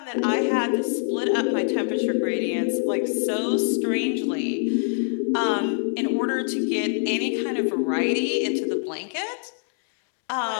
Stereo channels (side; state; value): right; silent; 62 dB below the other